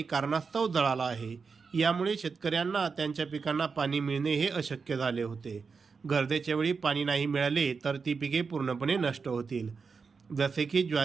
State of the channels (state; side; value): quieter; left; 5.1 dB